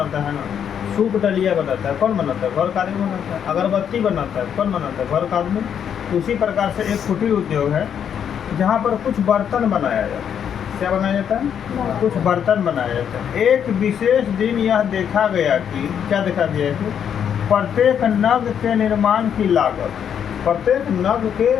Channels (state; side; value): quieter; right; 8.4 dB